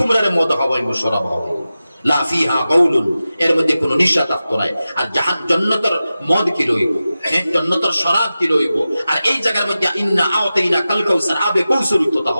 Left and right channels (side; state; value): both; inverted; correlation -0.94